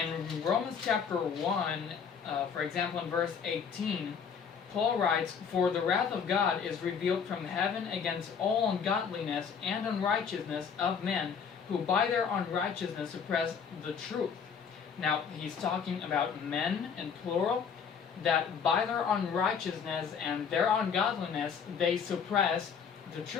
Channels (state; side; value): quieter; right; 6.7 dB